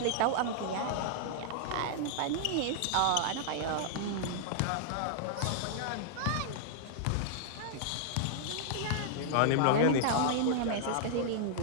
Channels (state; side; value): different; both; correlation -0.01